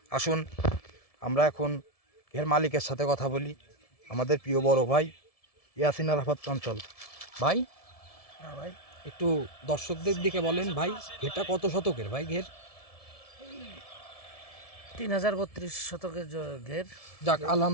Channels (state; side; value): late; right; 1.7 ms